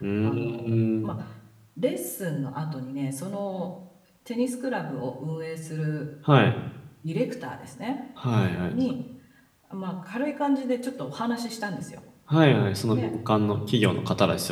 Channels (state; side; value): identical; both; correlation 1.00